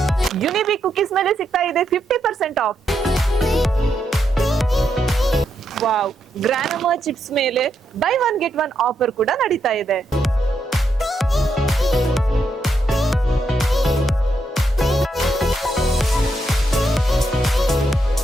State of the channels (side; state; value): both; normal; correlation 0.80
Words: ಯುನಿಬಿಕ್ ಕುಕೀಸ್ ಮೇಲೆ ಸಿಗ್ತಾ ಇದೆ 50% ಆಫ್. ವಾವ್, ಗ್ರಾನಮಾ ಚಿಪ್ಸ್ ಮೇಲೆ by one get one offer ಕೂಡ ನಡೀತಾ ಇದೆ.